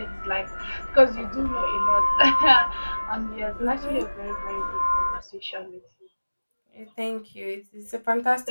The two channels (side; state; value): both; inverted; correlation -1.00